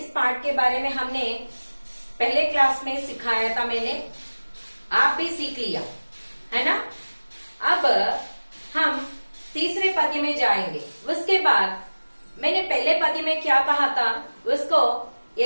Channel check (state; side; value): inverted; both; correlation -1.00